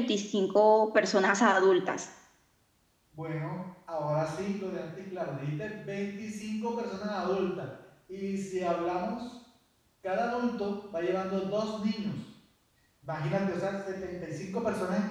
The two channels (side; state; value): both; identical; correlation 1.00